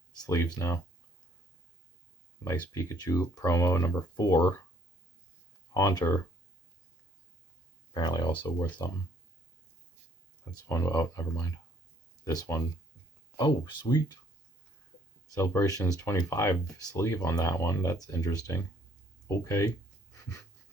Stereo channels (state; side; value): normal; both; correlation 0.62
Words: sleeves now. Nice Pikachu promo number 4. Haunter. Apparently also worth something. That's one. Oh, never mind. This one. Oh, sweet. Celebrations 25 sleeve on that one. That's interesting. Okay.